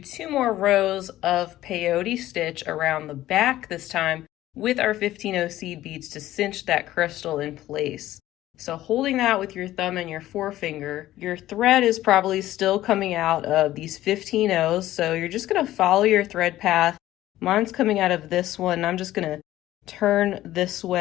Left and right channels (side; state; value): right; quieter; 14.6 dB